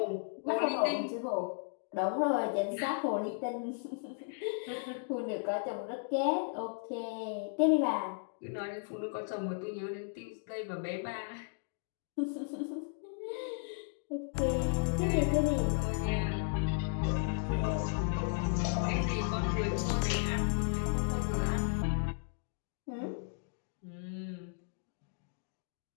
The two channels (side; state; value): right; silent; digital silence